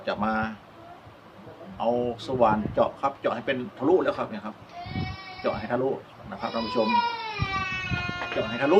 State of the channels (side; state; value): both; identical; correlation 1.00